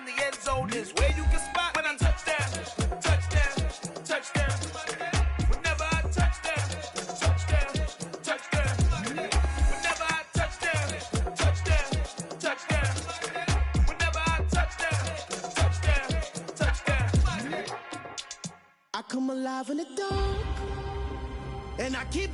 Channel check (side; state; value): both; identical; correlation 1.00